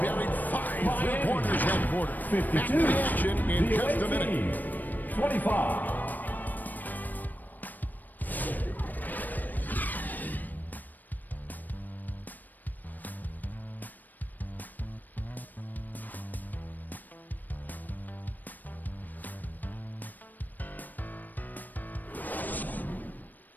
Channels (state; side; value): late; right; 0.087 ms